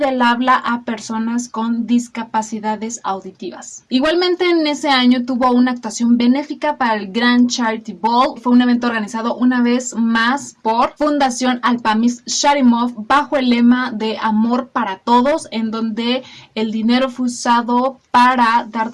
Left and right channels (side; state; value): both; identical; correlation 1.00